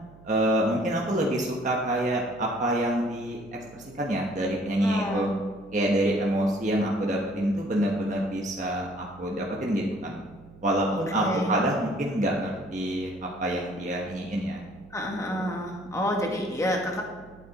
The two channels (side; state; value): right; noise; hum, 22 dB below the sound